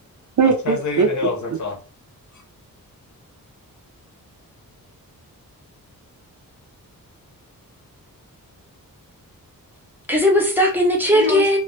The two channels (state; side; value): normal; both; correlation 0.23